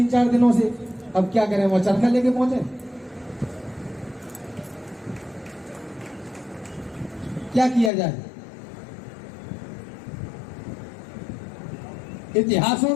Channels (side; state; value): right; drops out; at 7.9 s